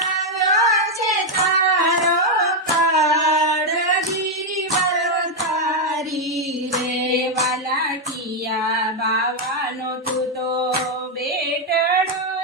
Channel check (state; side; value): normal; both; correlation 0.02